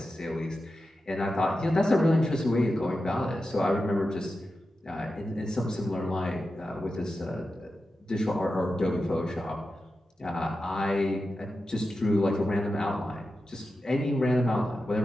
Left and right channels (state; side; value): normal; both; correlation 0.91